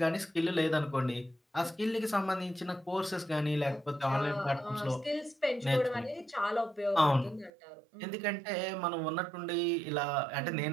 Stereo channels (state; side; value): drops out; left; at 7.5 s